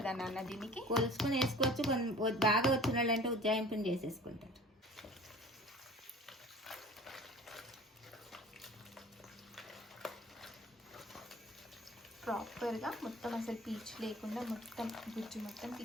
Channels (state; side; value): normal; both; correlation 0.45